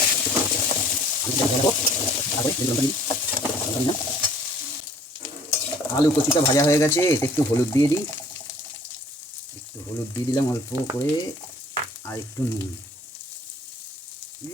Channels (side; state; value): both; normal; correlation 0.54